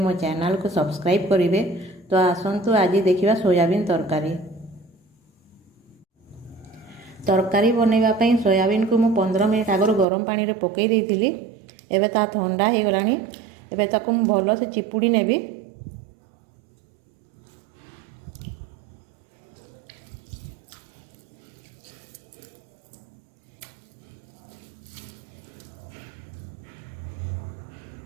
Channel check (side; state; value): left; drops out; at 10.1 s